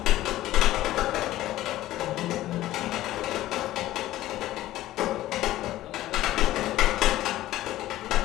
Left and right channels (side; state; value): right; quieter; 15.2 dB